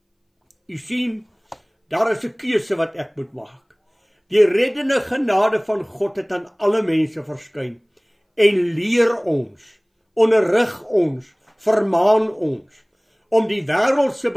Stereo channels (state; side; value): identical; both; correlation 1.00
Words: U sien, daar is 'n keuse wat ek moet maak. Die reddende genade van God het aan alle mense verskyn en leer ons, onderrig ons, vermaan ons om die wêreldse